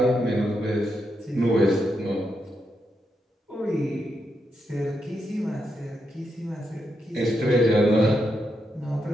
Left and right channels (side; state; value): both; normal; correlation 0.83